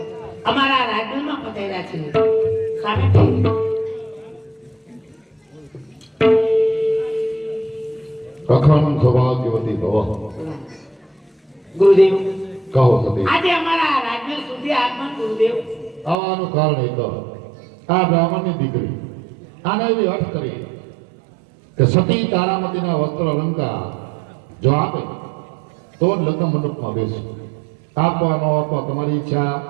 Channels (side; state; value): left; drops out; at 16.2 s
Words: અમારા રાજ્યમાં પધાર્યા છે. સામે અખંડ સૌભાગ્યવતી ભવ. ગુરુદેવ કહો સતી. આજે અમારા રાજ્ય સુધી આગમન ગુરુદેવ. આવવાનું કારણ એક આ બ્રાહ્મણની દીકરી આને એવી અર્થ કરી કે સતી તારામતીના વસ્ત્ર અલંકાર જો આપે તો જ લગ્ન મંડપમાં બેસે. આપવાનો આપવા તમારી ઈચ્છા